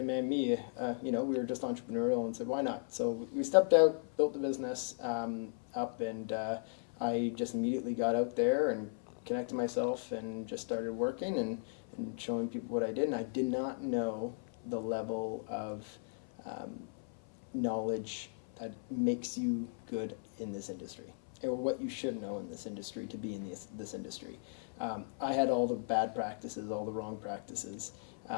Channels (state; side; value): silent; right; 53 dB below the other